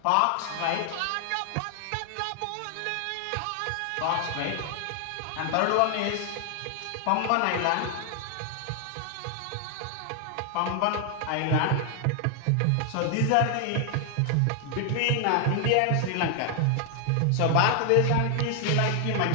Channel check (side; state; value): both; different; correlation 0.00